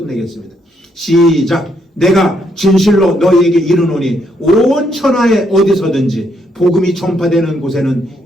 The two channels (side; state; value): both; normal; correlation 0.74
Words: 시작. 내가 진실로 너희에게 이르노니 온 천하에 어디서든지 복음이 전파되는 곳에는